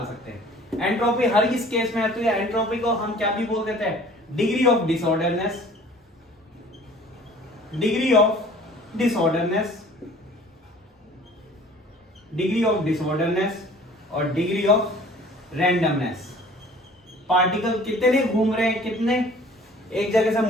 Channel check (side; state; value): both; normal; correlation 0.49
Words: सकते हैं। एंट्रोपी हर इस केस में आती है, एंट्रोपी को हम क्या भी बोल देते हैं, degree of disorderness, degree of disorderness, degree of disorderness और डिग्री ऑफ रैंडमनेस। पार्टिकल कितने घूम रहे हैं, कितने एक जगह से